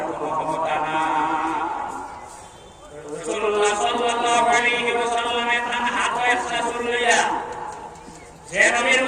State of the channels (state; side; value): identical; both; correlation 1.00